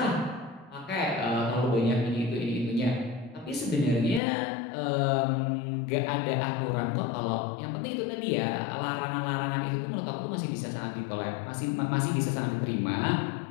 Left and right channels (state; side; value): drops out; right; at 4.2 s